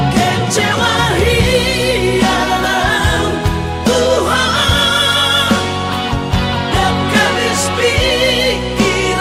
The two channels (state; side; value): identical; both; correlation 1.00